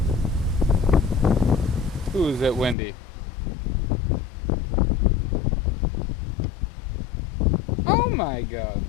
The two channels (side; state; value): right; drops out; at 2.8 s